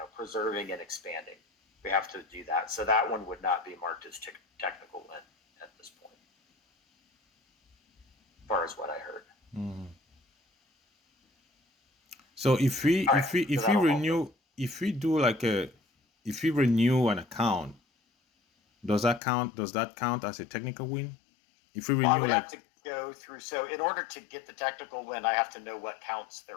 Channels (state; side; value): drops out; right; at 19.2 s